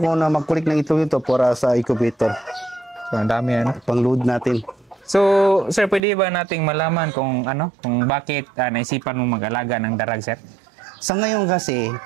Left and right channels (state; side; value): drops out; left; at 6.0 s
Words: na mag-collect ng itlog ito para sa incubator. So, ang dami Pang-load natin. So, sir, pwede ba nating malaman kung bakit naisipan mong mag-alaga ng darag, sir? Sa ngayon kasi,